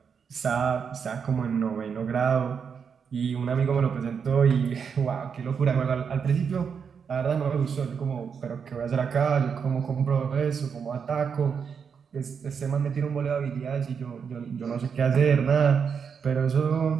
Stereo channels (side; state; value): left; quieter; 6.5 dB